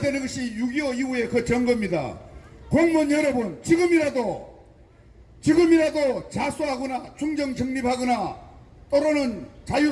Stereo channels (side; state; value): both; identical; correlation 1.00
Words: 것이 6.25 이후의 그 정거입니다. 공무원 여러분, 지금이라도 자수하거나 중정 정립하거나 또는